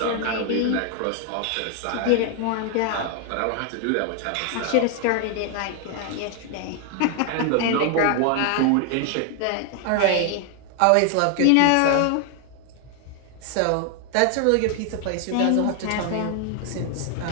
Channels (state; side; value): different; both; correlation 0.00